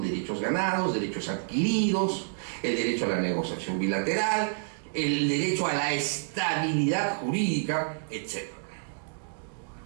ganados, derechos adquiridos, el derecho a la negociación bilateral, el derecho a la estabilidad jurídica, etc.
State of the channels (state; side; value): silent; left; digital silence